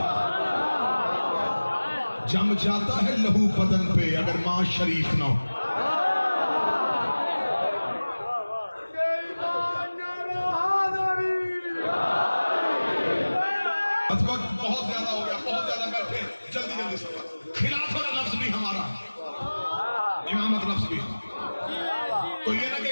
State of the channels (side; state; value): both; inverted; correlation -1.00